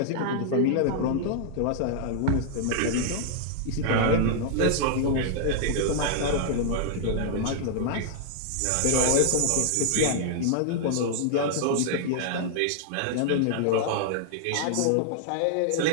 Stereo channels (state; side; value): different; both; correlation -0.01